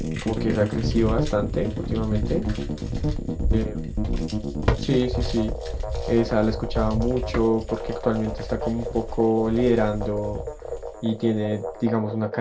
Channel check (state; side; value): identical; both; correlation 1.00